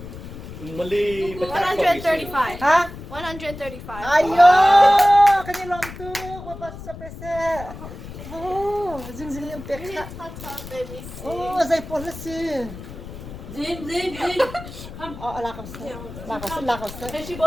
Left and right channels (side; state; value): left; noise; rumble, 13 dB below the sound